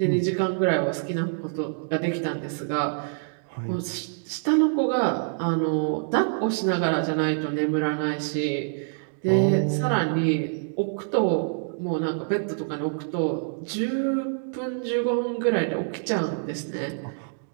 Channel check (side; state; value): left; silent; digital silence